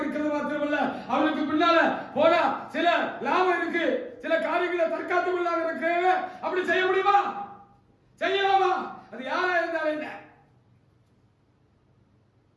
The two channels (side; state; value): both; identical; correlation 1.00